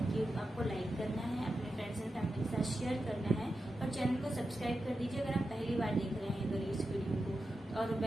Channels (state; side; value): normal; both; correlation 0.90